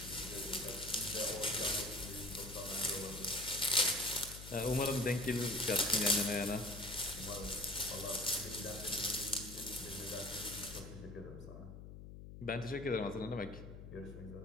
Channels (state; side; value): noise; left; hum, 12 dB below the sound